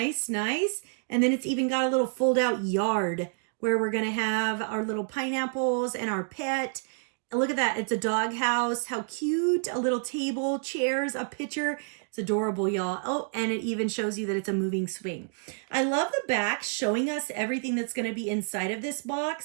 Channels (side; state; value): left; silent; 59 dB below the other